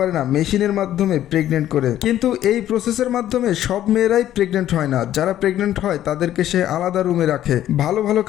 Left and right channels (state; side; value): quieter; right; 12.2 dB